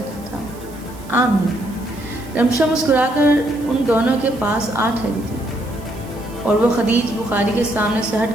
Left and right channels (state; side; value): noise; right; hiss, 22 dB below the sound